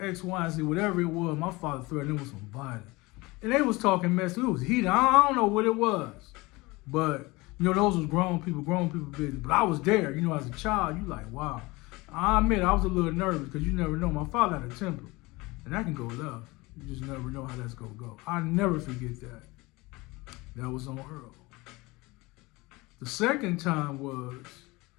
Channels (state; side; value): quieter; right; 22.8 dB